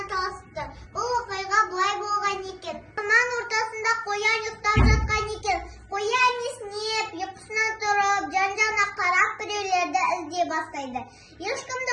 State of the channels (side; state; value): both; identical; correlation 1.00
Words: çalıştı. Bu vakayga bulay bo'lgan ekan. Aman ortasında koyan yuktap жатқан ekan. Koyan esnep, yapısına durup, can-cana qarab bireylerde izley başlaydı. Hiç kimde